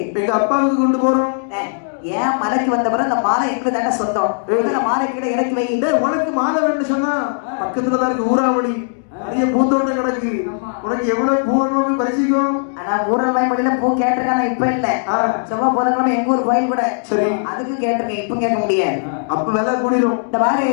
எங்க அப்பாவுக்கு கொண்டு போறோம். ஏன் மலைக்கு வந்த பிறகு அந்த மாலை எங்களுக்கு தானே சொந்தம். மாலை கீழே இறக்கி வை. உனக்கு மாலை வேணும்னு சொன்னா பக்கத்துலதான் இருக்கு ஊராவளி. நிறைய பூந்தோட்டம் கிடக்கு. உனக்கு எவ்வளவு பூ வேணும்னு பரிசிக்கும். ஆனா ஊராவளி மொழியில பூ கேட்டிருக்காங்க. இப்ப இல்ல, செவ்வாய் புதன்கிழமை எங்க ஊர் கோயில் கூட. சரி, அதுக்கு கேட்டிருக்கேன். இப்ப கேட்க முடியாது. அப்ப வேலை கூடிரும். இந்த மாதிரி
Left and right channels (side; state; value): right; silent; digital silence